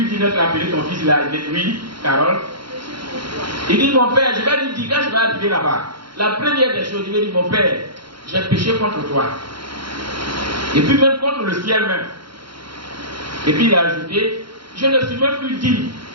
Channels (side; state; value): left; late; 0.73 ms